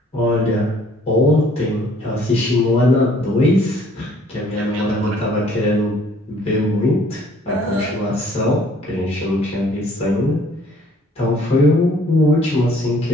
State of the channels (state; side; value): normal; both; correlation 0.58